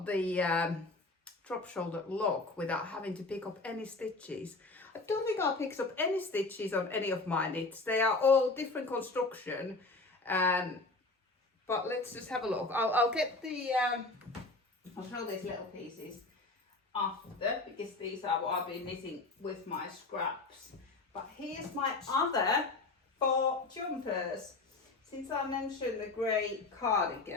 the drop shoulder look without having to pick up any stitches. I don't think I picked up any stitches on any of my knits. They are all different construction, but let's just have a look. I'll get the I'll show these little pieces after, because these are what I've been knitting with my scraps. But here's my other 4 jumpers. Since I mentioned the grey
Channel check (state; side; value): quieter; right; 3.3 dB